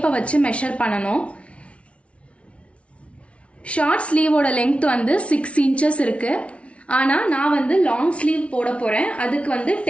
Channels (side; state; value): right; late; 0.062 ms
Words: வச்சு மெஷர் பண்ணணும். ஷார்ட் ஸ்லீவோட லென்த் வந்து 6 inches இருக்குது, ஆனால் நான் வந்து லாங் ஸ்லீவ் போட போகிறேன். அதுக்கு வந்து